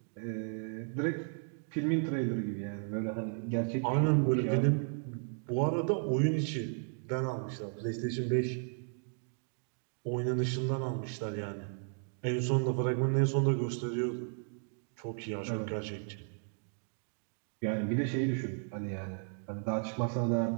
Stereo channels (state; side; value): silent; left; 55 dB below the other